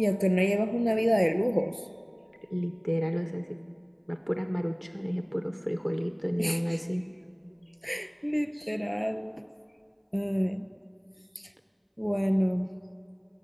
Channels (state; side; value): identical; both; correlation 1.00